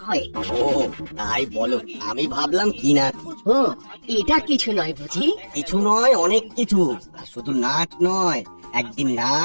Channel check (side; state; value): both; inverted; correlation -1.00